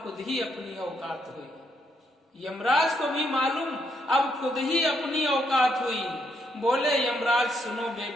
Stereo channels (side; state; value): both; normal; correlation 0.76